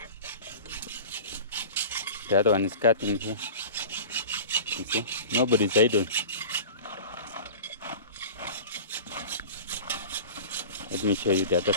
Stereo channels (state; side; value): inverted; both; correlation -0.36